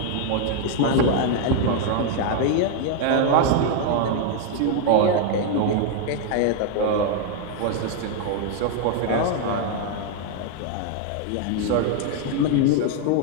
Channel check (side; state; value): both; different; correlation 0.00